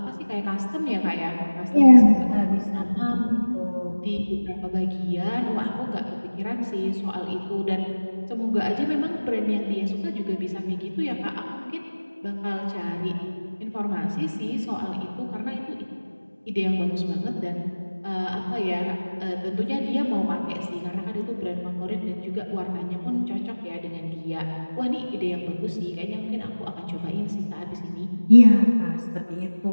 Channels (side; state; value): both; inverted; correlation -1.00